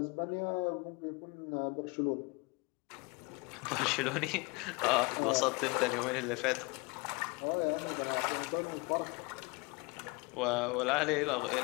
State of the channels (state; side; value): quieter; right; 27.5 dB